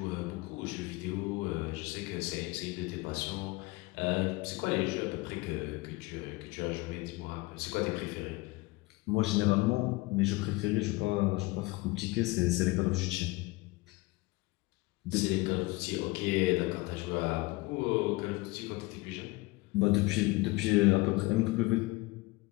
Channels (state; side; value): quieter; right; 22.5 dB